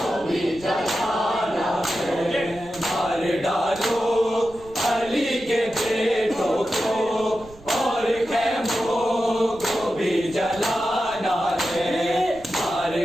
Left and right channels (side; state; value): right; noise; rumble, 21 dB below the sound